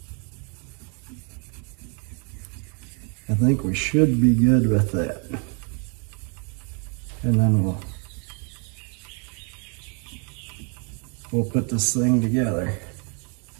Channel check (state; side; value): quieter; left; 37.1 dB